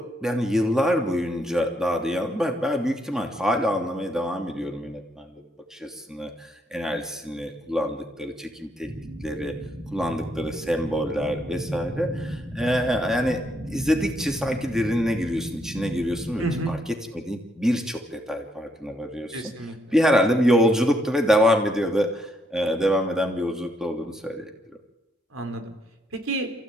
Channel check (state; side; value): normal; both; correlation 0.74